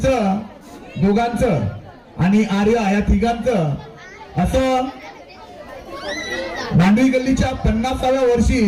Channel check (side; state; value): both; identical; correlation 1.00